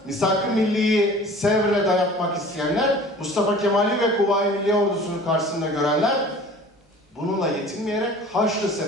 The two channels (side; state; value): both; normal; correlation 0.45